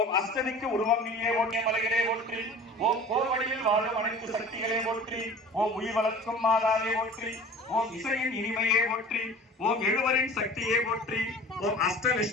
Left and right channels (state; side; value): normal; both; correlation 0.42